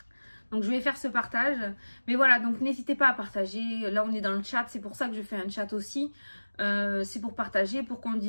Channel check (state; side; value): inverted; both; correlation -1.00